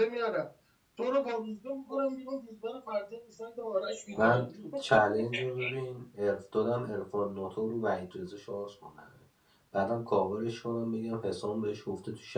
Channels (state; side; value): identical; both; correlation 1.00